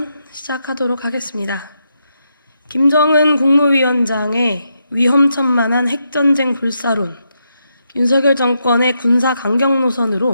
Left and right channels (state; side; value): inverted; both; correlation -0.82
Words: 시작하도록 하겠습니다. 김정은 국무위원장의 위험천만한 핵전쟁 불사론, 윤석열 정권의 군사 강경